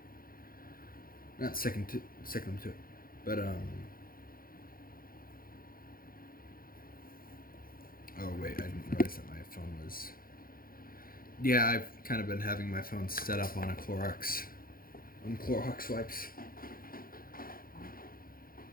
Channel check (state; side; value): late; right; 0.42 ms